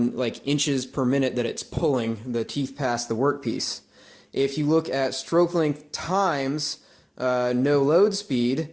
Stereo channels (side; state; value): both; identical; correlation 1.00